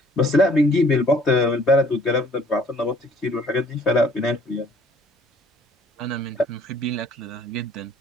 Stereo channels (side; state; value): both; normal; correlation 0.57